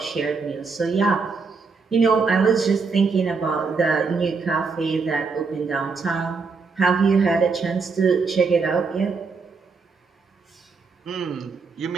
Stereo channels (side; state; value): left; quieter; 4.7 dB